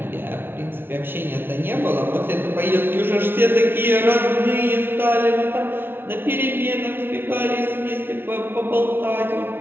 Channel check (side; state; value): left; late; 0.11 ms